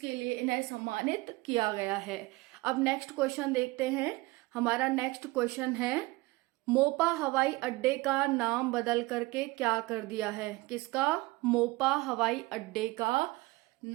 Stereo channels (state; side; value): quieter; left; 21.8 dB